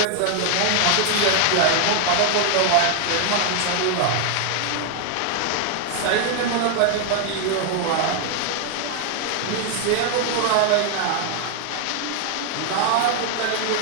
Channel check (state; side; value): different; both; correlation 0.00